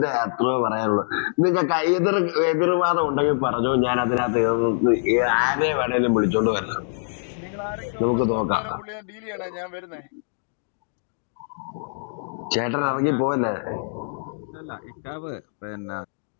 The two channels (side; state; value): right; silent; digital silence